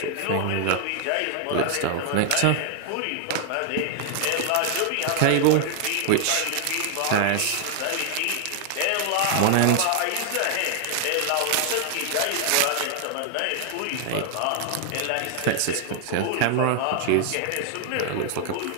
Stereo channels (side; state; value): both; different; correlation 0.00